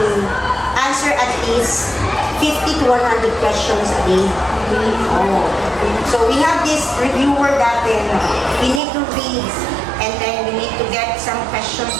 answer at least 50 to 100 questions a day. So we have this reviewer dati, we need to read and then we need to get some questions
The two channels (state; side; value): drops out; left; at 8.8 s